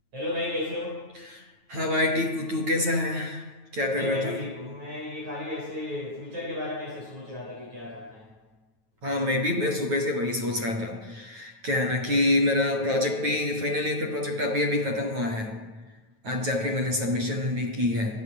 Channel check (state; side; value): late; left; 9.2 ms